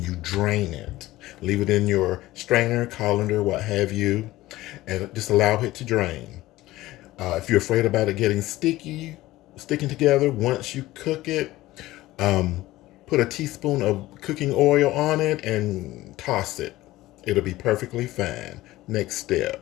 you drain it. Leave it in your strainer, colander, what have you, and just allow it to drain. If you're afraid about it getting sticking together, once you cook it, put a teaspoon of cooking oil on it and toss it. It'll be perfectly fine. Next step.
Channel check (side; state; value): right; quieter; 17.1 dB